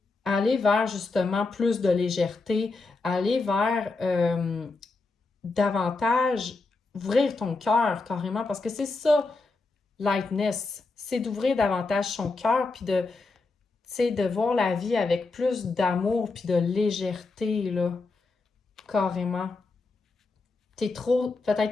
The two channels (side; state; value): right; quieter; 3.7 dB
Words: aller vers justement plus de légèreté, aller vers davantage ouvrir ton cœur carrément, parce que c'est ça, lightness, c'est d'ouvrir davantage son cœur, puis de, tu sais, de voir la vie avec plus d'amour, puis de légèreté, là, carrément. T'es